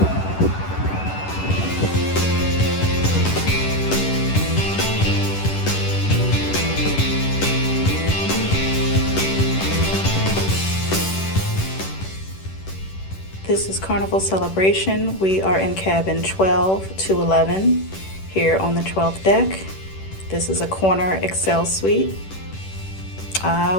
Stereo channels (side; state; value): right; late; 10 ms